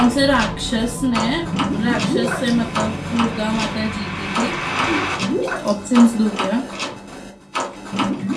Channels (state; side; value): identical; both; correlation 1.00